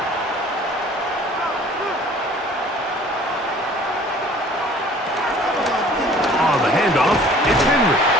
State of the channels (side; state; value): both; normal; correlation 0.50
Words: On the handoff, it's Henry.